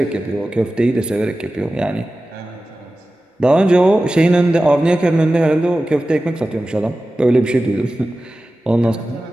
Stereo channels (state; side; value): normal; both; correlation 0.95